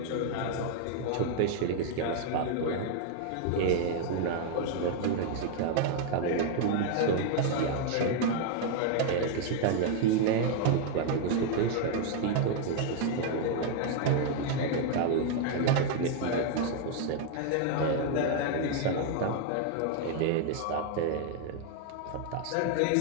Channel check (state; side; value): different; both; correlation 0.00